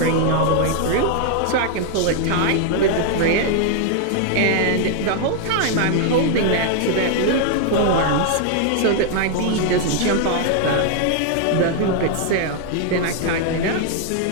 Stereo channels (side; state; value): both; different; correlation 0.00